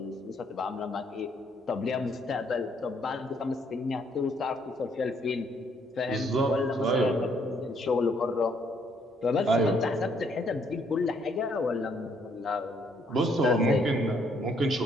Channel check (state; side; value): normal; both; correlation 0.68